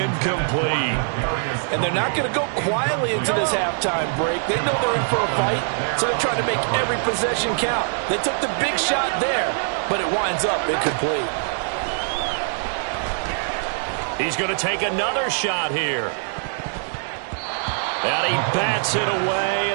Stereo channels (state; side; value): silent; left; digital silence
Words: And they're not going to go quietly into this halftime break. They know they're in for a fight, so they're trying to make every possession count. They took the big shot there, but it winds up incomplete. He's going to take another shot here. And he bats it away,